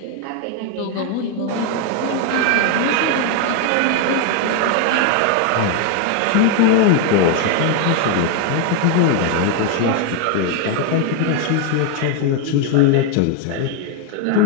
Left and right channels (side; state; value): both; different; correlation 0.01